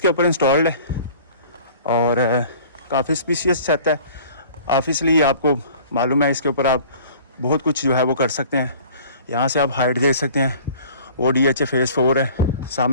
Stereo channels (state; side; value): inverted; both; correlation -0.48